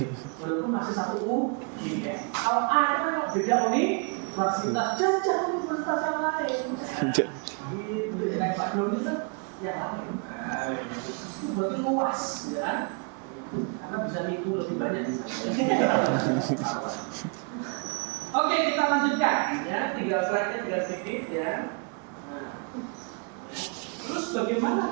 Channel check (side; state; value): left; quieter; 38.6 dB